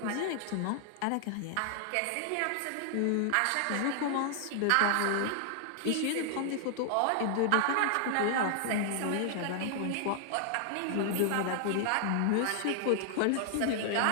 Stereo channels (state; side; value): different; both; correlation 0.00